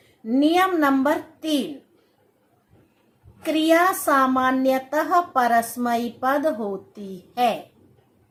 नियम नंबर 3, क्रिया सामान्यतः परस्मैपद पद होती है।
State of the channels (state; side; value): identical; both; correlation 1.00